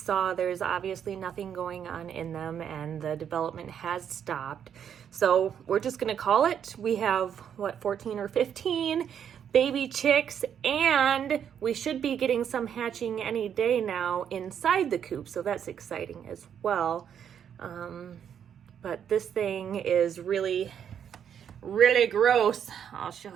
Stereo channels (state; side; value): quieter; left; 8.6 dB